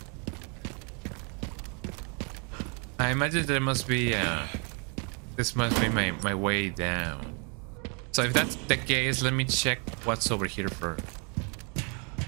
I imagine there must be this must be my way down. So if that's the case, let me check what's over here first.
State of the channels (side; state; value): left; quieter; 36.0 dB